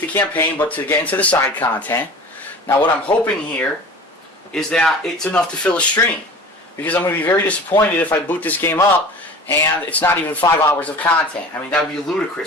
the campaign, but to get into the side content. Now what I'm hoping here is that it's enough to fill a stream. Because I'm going to be very disappointed if I boot this game up and it's not even 5 hours of content. I mean, that would be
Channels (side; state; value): both; normal; correlation 0.40